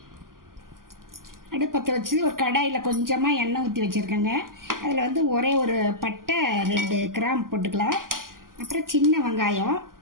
அடுப்பத்தை வச்சு ஒரு கடாயில் கொஞ்சமாக எண்ணெய் ஊற்றி வச்சுருக்கேங்க. அதில் வந்து ஒரே ஒரு பட்டை, 2 கிராம்பு போட்டுக்கலாம். அப்புறம் சின்ன வெங்காயம்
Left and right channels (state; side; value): late; left; 0.91 ms